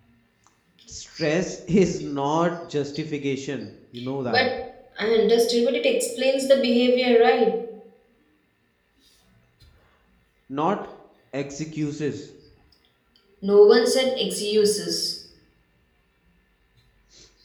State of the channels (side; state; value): both; identical; correlation 1.00